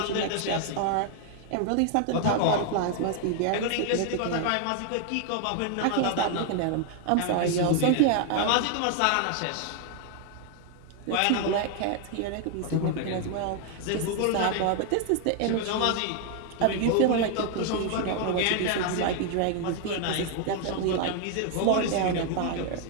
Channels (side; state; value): both; different; correlation 0.00